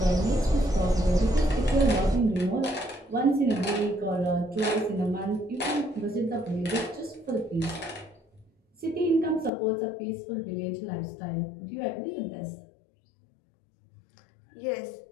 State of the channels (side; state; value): right; drops out; at 9.5 s